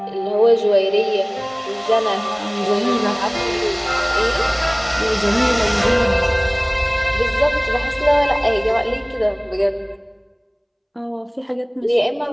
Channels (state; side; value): identical; both; correlation 1.00